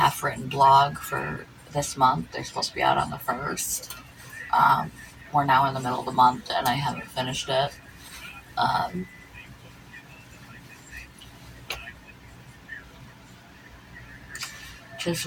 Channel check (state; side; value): identical; both; correlation 1.00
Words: blog for this month. They're supposed to be out on the 1st. We're now in the middle of the month, and I haven't finished it. Um, just